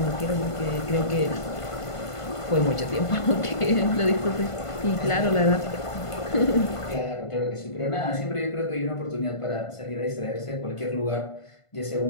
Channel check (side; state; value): right; late; 1.5 ms